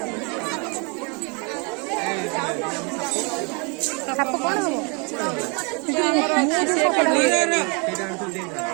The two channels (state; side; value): quieter; left; 33.4 dB